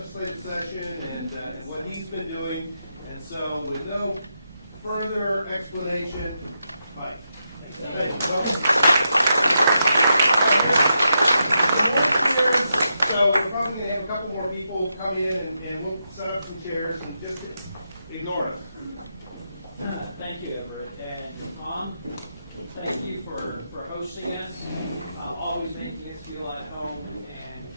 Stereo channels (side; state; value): both; inverted; correlation -0.85